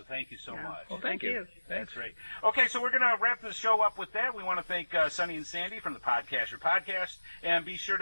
thank you so much. Well, thank you. That's great. Okay, so we're going to wrap the show up with that. We want to thank Sonny and Sandy from the Podcacher Podcast. And be sure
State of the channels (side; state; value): both; inverted; correlation -1.00